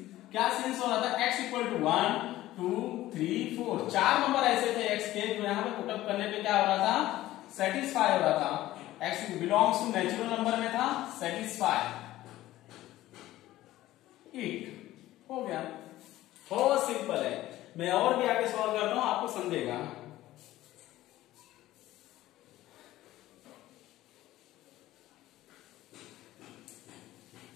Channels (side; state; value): right; quieter; 15.4 dB